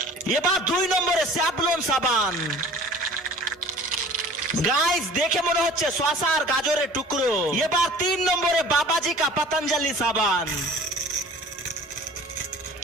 এবার 2 নম্বরে স্যাভলন সাবান। গাইস দেখে মনে হচ্ছে শসা আর গাজরের টুকরো। এবার 3 নম্বরে বাবাজি কা পতঞ্জলি সাবান।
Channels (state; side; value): normal; both; correlation 0.46